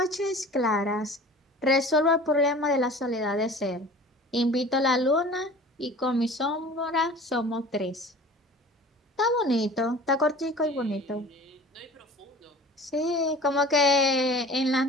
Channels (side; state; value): both; normal; correlation 0.43